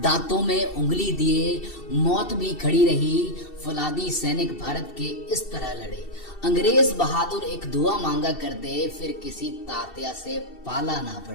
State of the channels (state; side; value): late; right; 2.7 ms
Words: दांतों में उंगली दिए मौत भी खड़ी रही, फौलादी सैनिक भारत के इस तरह लड़े। अंग्रेज बहादुर एक दुआ मांगा करते, फिर किसी तात्या से पाला ना